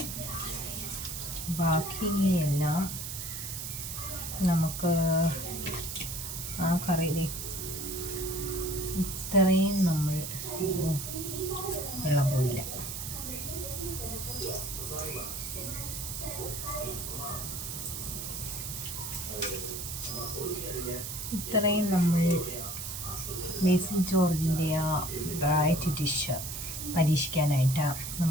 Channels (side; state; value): right; noise; hiss, 6 dB below the sound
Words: ബാക്കിയെല്ലാം നമുക്ക് ആ കറി ഇത്രയും നമ്മൾ വെള്ളം പോയില്ല. ഇത്രയും നമ്മൾ ബേസിൽ ജോർജിൻ്റെ ആ വെറൈറ്റി ഡിഷ് പരീക്ഷിക്കാനായിട്ട്